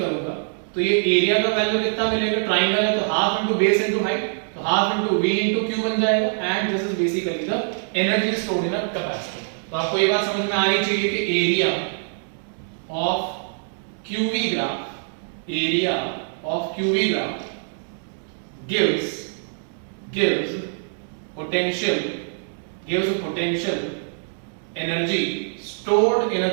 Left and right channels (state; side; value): silent; left; digital silence